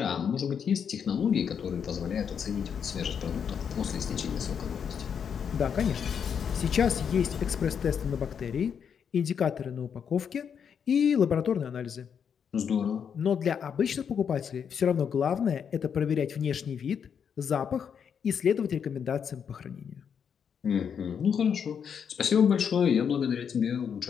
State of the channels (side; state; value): right; quieter; 7.4 dB